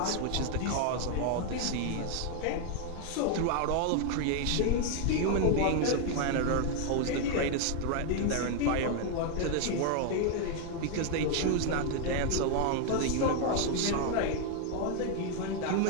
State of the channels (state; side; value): different; both; correlation 0.01